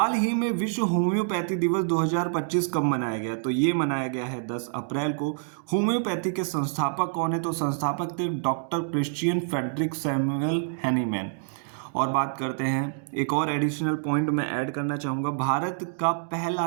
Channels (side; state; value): left; silent; digital silence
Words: ही में विश्व होम्योपैथी दिवस 2025 कब मनाया गया? तो ये मनाया गया है 10 अप्रैल को। होम्योपैथी के संस्थापक कौन है? तो संस्थापक थे doctor Christian Friedrich Samuel Hahnemann. और बात करते हैं, एक और एडिशनल पॉइंट मैं ऐड करना चाहूँगा। भारत का पहला